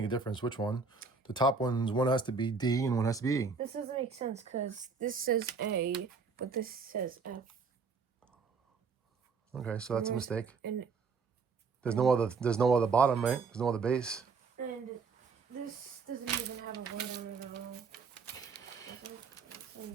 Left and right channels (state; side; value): quieter; left; 4.9 dB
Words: a difference which one. The top one has to be D and one has to be E. This doesn't make sense because this says A, but this says F. Okay, so that's a mistake. And There's no other bottom, right? There's no other base. And this doesn't even have a word on it at all. Same